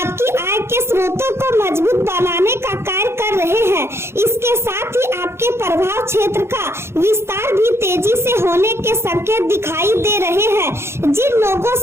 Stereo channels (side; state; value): left; late; 0.12 ms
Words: आय के स्रोतों को मजबूत बनाने का कार्य कर रहे हैं। इसके साथ ही आपके प्रभाव क्षेत्र का विस्तार भी तेजी से होने के संकेत दिखाई दे रहे हैं। जिन लोगों